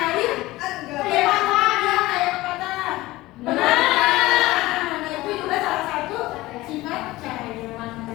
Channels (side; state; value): right; quieter; 18.5 dB